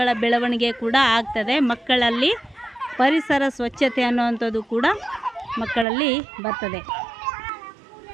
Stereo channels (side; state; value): left; drops out; at 5.9 s